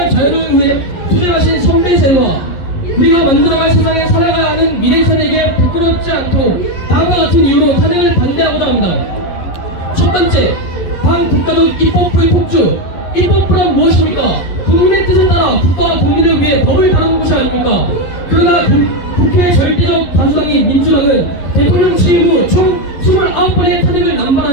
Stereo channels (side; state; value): right; late; 11 ms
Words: 자유를 위해 투쟁하신 선배세와 우리가 만들어갈 세상에 살아가야 하는 미래세대에게 부끄럽지 않도록 다음과 같은 이유로 탄핵을 반대하고자 합니다. 첫 번째, 반국가적 입법부의 폭주. 입법부란 무엇입니까? 국민의 뜻에 따라 국가와 국민을 위해 법을 다루는 것이 아닙니까? 그러나 국회의 절대적 다수당인 민주당은 대통령 취임 후 총 29번의 탄핵을